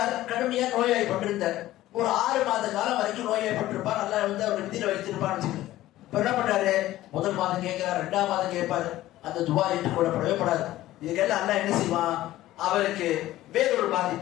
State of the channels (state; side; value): quieter; right; 15.3 dB